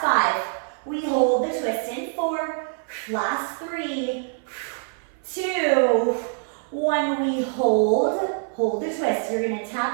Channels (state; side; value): silent; left; 55 dB below the other